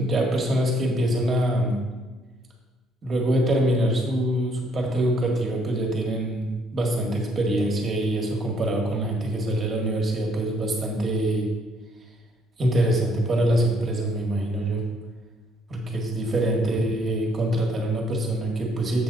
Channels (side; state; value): both; normal; correlation 0.68